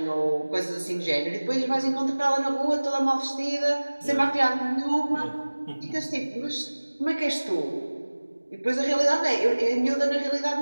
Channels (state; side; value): inverted; both; correlation -1.00